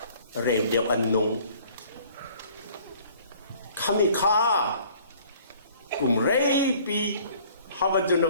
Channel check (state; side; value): inverted; both; correlation -0.54